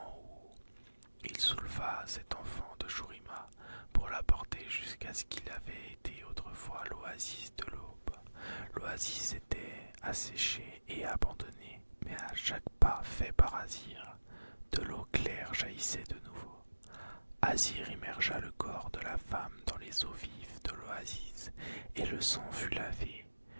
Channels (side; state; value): both; inverted; correlation -1.00